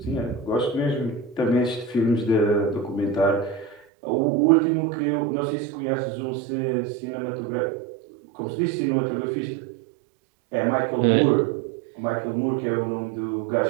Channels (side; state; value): left; drops out; at 3.8 s